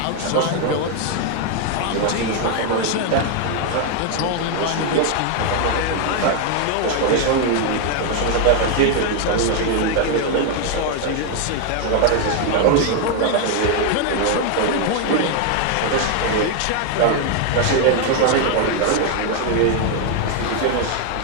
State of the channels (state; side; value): different; both; correlation 0.01